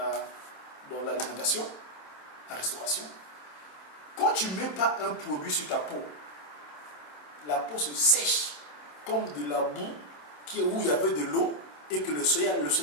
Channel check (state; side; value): late; right; 27 ms